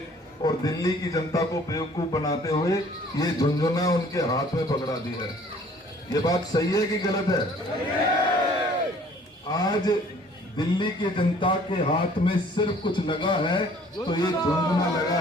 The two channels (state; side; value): normal; both; correlation 0.55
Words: और दिल्ली की जनता को बेवकूफ बनाते हुए ये झुंझुना उनके हाथ में पकड़ा दी है। ये बात सही है कि गलत है? आज दिल्ली की जनता के हाथ में सिर्फ कुछ लगा है तो ये झुंझुना लगा